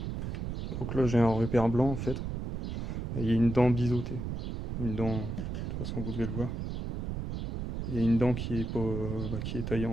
Donc là, j'ai un repère blanc en fait. Et il y a une dent biseautée. Une dent, de toute façon, vous devez le voir. Il y a une dent qui est pas, qui est taillée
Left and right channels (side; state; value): right; noise; rumble, 3 dB below the sound